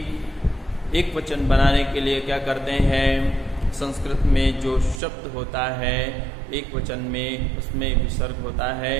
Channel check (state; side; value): drops out; left; at 5.0 s